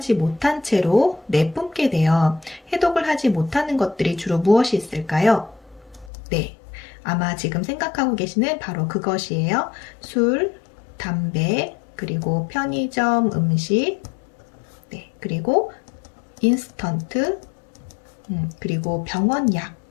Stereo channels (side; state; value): right; drops out; at 6.1 s